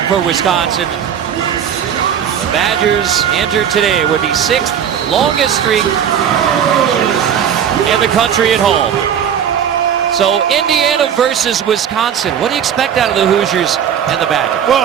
for Wisconsin. The Badgers entered today with the 6th longest streak in the country at home. So Indiana versus Wisconsin. What do you expect out of the Hoosiers and the Badgers?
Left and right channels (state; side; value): quieter; left; 8.7 dB